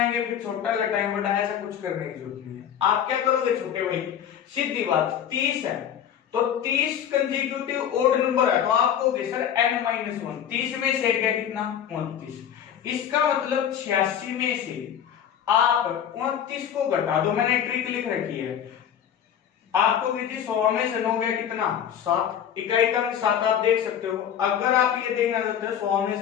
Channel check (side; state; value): right; quieter; 9.2 dB